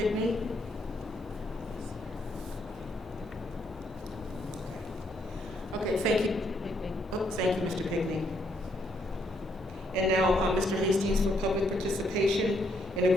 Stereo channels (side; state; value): both; normal; correlation 0.73